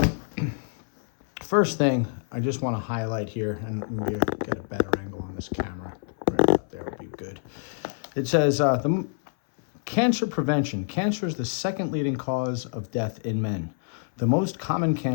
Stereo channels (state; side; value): silent; right; 58 dB below the other